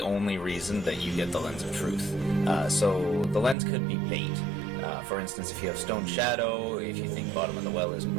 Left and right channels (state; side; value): drops out; left; at 3.6 s